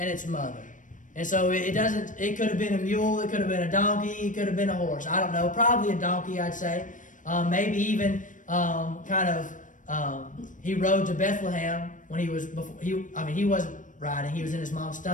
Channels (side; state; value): right; late; 0.37 ms